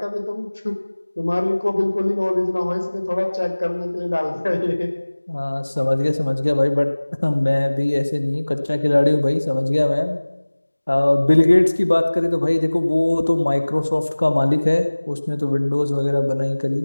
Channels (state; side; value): inverted; both; correlation -1.00